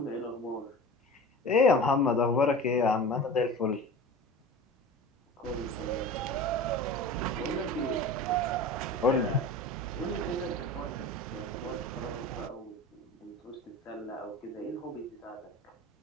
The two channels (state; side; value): normal; both; correlation 0.35